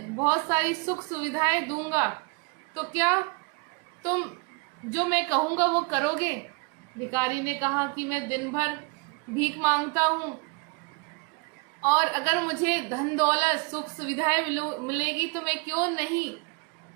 बहुत सारी सुख सुविधाएं दूंगा तो क्या तुम जो मैं कहूँगा वो करोगे? भिखारी ने कहा कि मैं दिन भर भीख मांगता हूँ और अगर मुझे धन दौलत, सुख सुविधाएं मिलेगी तो मैं क्यों नहीं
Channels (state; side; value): quieter; left; 31.1 dB